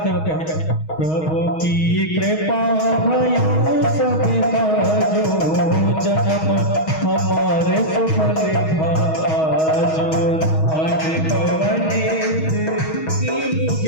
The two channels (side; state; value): right; late; 6.3 ms